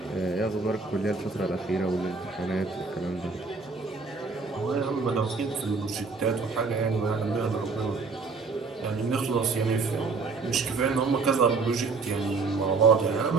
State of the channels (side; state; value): left; quieter; 4.3 dB